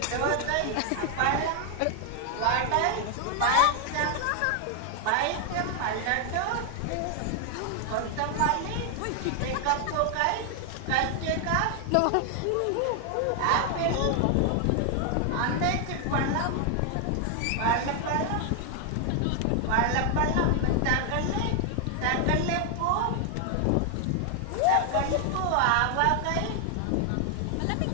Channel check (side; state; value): both; different; correlation 0.00